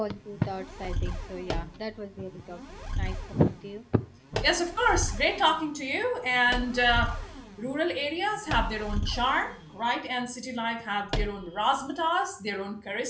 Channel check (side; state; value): both; identical; correlation 1.00